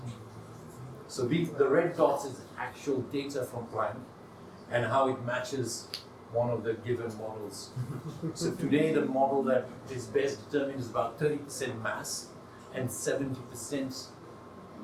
So the red dots is actual data from Planck and how it matches one of the given models. So today the model that is best determined is about 30% mass and 70%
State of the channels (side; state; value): both; identical; correlation 1.00